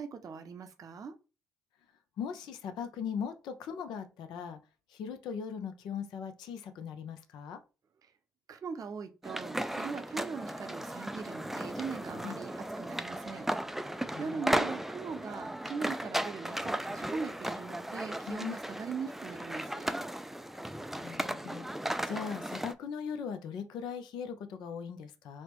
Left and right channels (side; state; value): both; normal; correlation 0.81